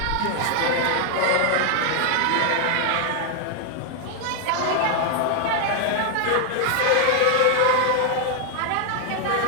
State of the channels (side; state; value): both; different; correlation 0.00